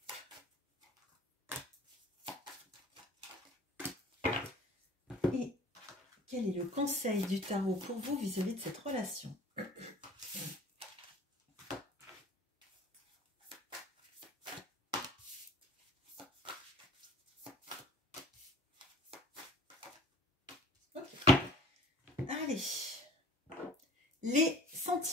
Et quel est le conseil du tarot pour vous vis-à-vis de cette relation? Okay. Allez, les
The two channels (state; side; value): normal; both; correlation 0.47